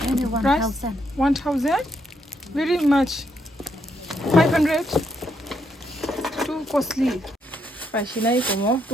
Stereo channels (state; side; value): normal; both; correlation 0.76